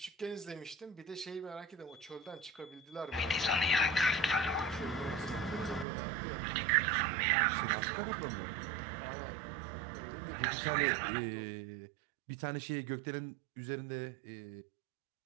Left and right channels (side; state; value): left; drops out; at 5.9 s